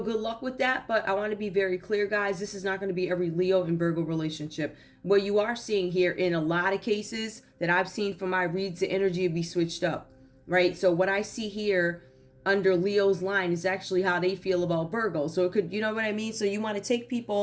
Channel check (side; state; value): both; identical; correlation 1.00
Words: good luck with that. But I want to be very clear, guys. This is not going to be every Leo and Virgo relationship. What you are seeing here in a lot of cases that I've seen from my reads, the energy will be switched up, right? So what I see here under Leo's line is actually how they feel about Virgo. So it could, you know what I mean? So you want to take